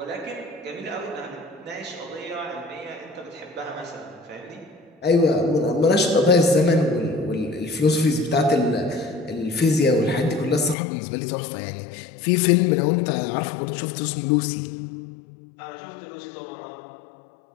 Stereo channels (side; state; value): right; drops out; at 10.8 s